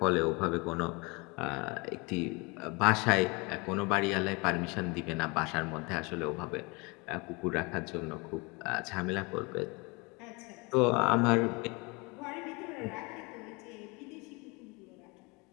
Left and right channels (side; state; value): right; quieter; 27.9 dB